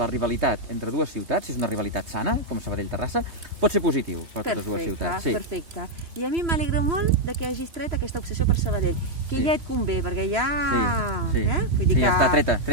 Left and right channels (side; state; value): left; late; 3.0 ms